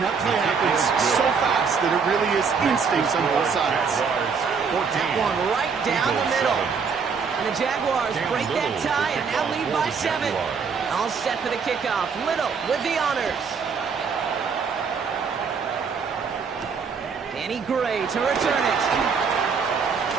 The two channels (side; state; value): left; quieter; 5.7 dB